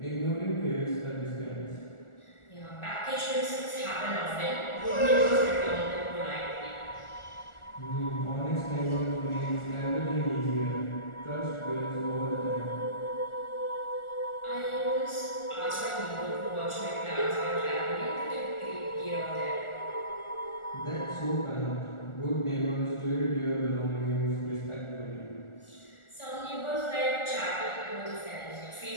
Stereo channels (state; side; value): late; right; 1.4 ms